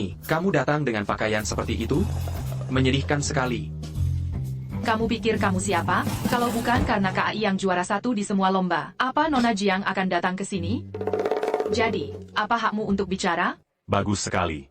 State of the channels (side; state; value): both; identical; correlation 1.00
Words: kamu datang dengan pakaian seperti itu? Menyedihkan sekali. Kamu pikir kamu siapa? Kalau bukan karena KAI yang juara 1 di semua lomba, apa Nona Jiang akan datang ke sini? Jadi, apa hakmu untuk bicara? Bagus sekali.